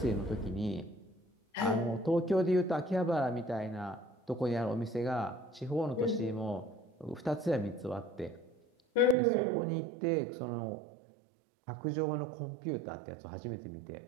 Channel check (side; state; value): left; drops out; at 9.2 s